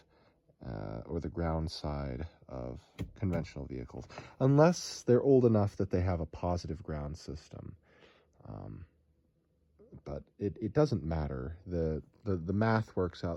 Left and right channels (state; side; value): identical; both; correlation 1.00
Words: or the ground side of conventional vehicles, unless they're old enough that they have a positive ground system. But it doesn't matter. The math works